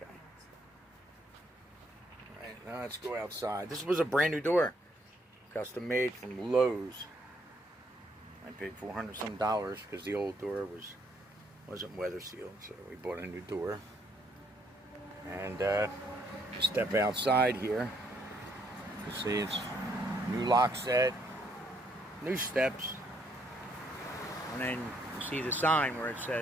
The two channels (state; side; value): normal; both; correlation 0.70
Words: Alright, now let's go outside. This was a brand new door. Custom made from Lowe's. I paid $400 some because the old door wasn't weather sealed, so we bought a new door. And you step outside here, you see it's new lock set, new steps, and then you see the sign where it